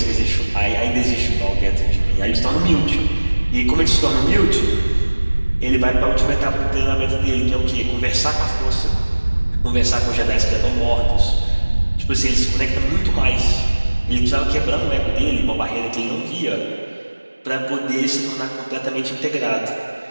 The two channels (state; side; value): inverted; both; correlation -1.00